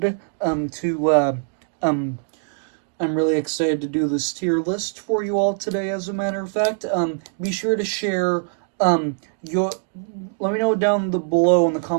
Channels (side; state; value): left; silent; digital silence